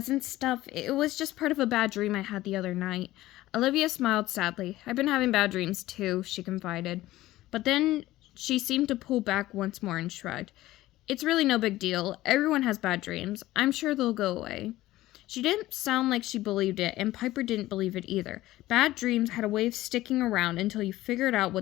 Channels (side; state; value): right; quieter; 16.3 dB